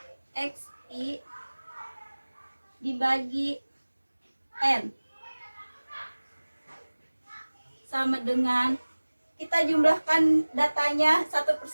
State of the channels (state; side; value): inverted; both; correlation -1.00